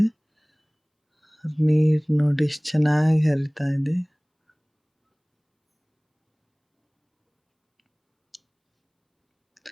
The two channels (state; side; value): identical; both; correlation 1.00